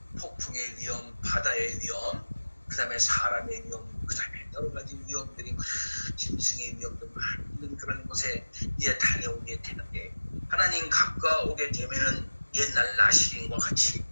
폭풍의 위험, 바다의 위험, 그 다음에 사람의 위험, 그 다음에 여러 가지 위험들이, 짐승의 위험도 많은 그런 곳에 이제 다녀오게 되는데, 하나님 가까우게 되면은 옛날 나시린과 같이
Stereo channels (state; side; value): inverted; both; correlation -1.00